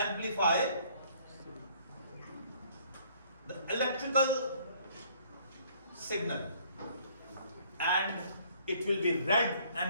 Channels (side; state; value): both; inverted; correlation -0.61